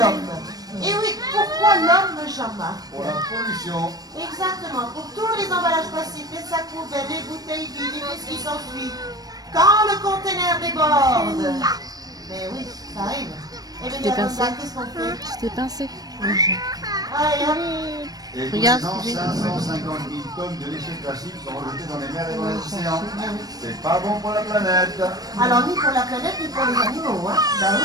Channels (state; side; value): late; left; 0.19 ms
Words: Et oui, pourquoi l'homme, Jean-Marc? Pour la pollution. Exactement, pour tous les emballages plastiques, les sacs poubelles, les bouteilles vides, et tout ce qui s'ensuit. Quand le conteneur déborde. Mais oui, ça arrive. Et bien, T'es pincé. qu'est-ce qu'on fait? Tu t'es pincé. Allez, hop. Et Regarde, tous les ans, 550 000 tonnes de déchets plastiques sont rejetés dans les mers et dans les océans. C'est pas bon pour la planète. Alors, ni pour la planète, ni pour les animaux, hein. Ben